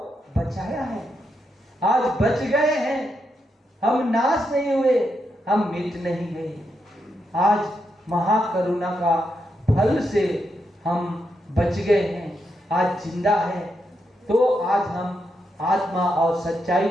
बचाया है, आज बच गए हैं। हम नाश नहीं हुए, हम मिट नहीं गए। आज महाकरुणा का फल से हम बच गए हैं, आज जिंदा है। तो आज हम आत्मा और सच्चाई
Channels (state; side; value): normal; both; correlation 0.83